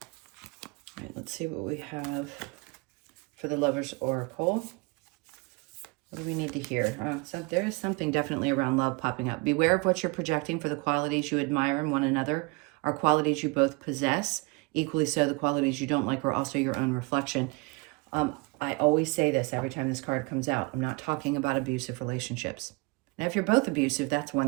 right, let's see what we have for the Lover's Oracle. What do we need to hear? So there is something definitely around love popping up. Beware of what you're projecting, for the qualities you admire in one another are qualities you both possess. Equally so, the qualities you don't like are also your own reflection. I always say this every time this card comes out. I'm not talking about abusive relationships. Now, if you're both abusive, that's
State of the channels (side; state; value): left; quieter; 27.9 dB